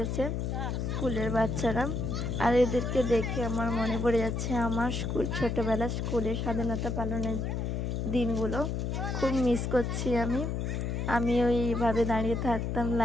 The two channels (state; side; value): noise; left; hum, 1 dB below the sound